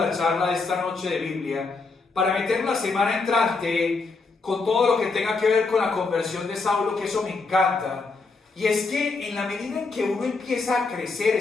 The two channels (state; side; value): quieter; right; 4.0 dB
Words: charla de esta noche de Biblia, para meter la semana entrante con todo lo que tenga que ver con la conversión de Saulo, que eso me encanta. Y es que en la medida en que uno empieza a crecer